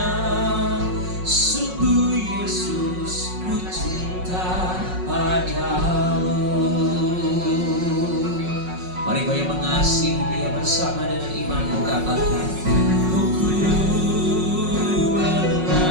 Sungguh Yesus, ku cinta padamu. Mari kau yang mengasihi Dia bersama dengan imanmu katakan, ku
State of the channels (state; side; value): late; left; 5.5 ms